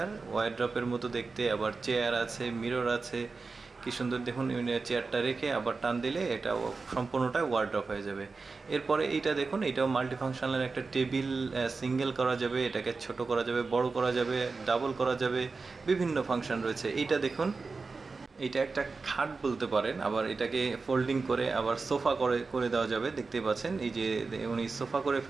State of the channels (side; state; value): left; quieter; 4.2 dB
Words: ওয়ারড্রপের মতো দেখতে। আবার চেয়ার আছে, মিরর আছে, কি সুন্দর দেখুন। চেয়ারটা রেখে আবার টান দিলে এটা সম্পূর্ণটা ওয়ারড্রপ হয়ে যাবে। এরপরে এইটা দেখুন, এটাও মাল্টি ফাংশনাল একটা টেবিল। সিঙ্গেল করা যাবে, এটাকে ছোট করা যাবে, বড় করা যাবে, ডাবল করা যাবে, বিভিন্ন ফাংশন রয়েছে। এইটা দেখুন, এটা একটা খাট বলতে পারেন। আবার এটাকে ফোল্ডিং করে আবার সোফা করে করে দেওয়া যাবে। দেখতে পাচ্ছেন এই যে উনি সোফা করে